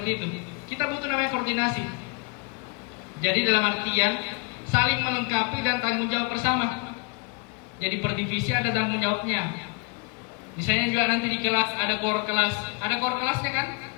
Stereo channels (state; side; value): quieter; right; 29.8 dB